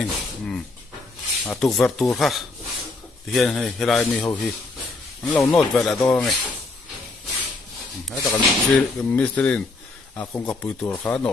tục vật tour ha thì hiện nay lại mi hầu hi lâu nốt về là đó này hết tất cả mistrin công cấp bự tổ cả nó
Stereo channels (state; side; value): quieter; right; 3.6 dB